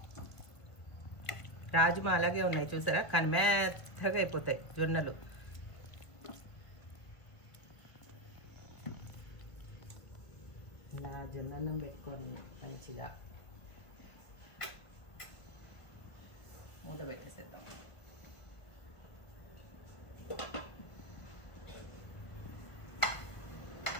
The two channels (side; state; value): right; late; 1.7 ms